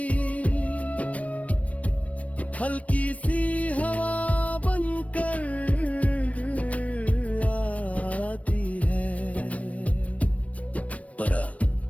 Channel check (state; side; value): late; right; 0.066 ms